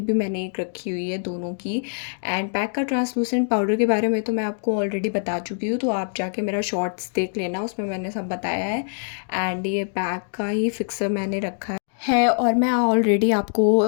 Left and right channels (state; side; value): silent; right; digital silence